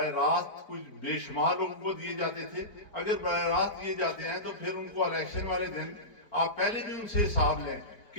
راست کچھ بے شمار لوگوں کو دیے جاتے تھے۔ اگر براہ راست دیے جاتے ہیں تو پھر ان کو الیکشن والے دن آپ پہلے بھی ان سے حساب لیں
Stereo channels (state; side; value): late; right; 4.4 ms